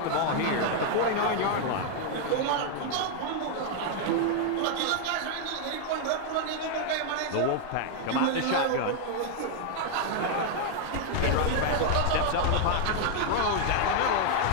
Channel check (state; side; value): different; both; correlation 0.00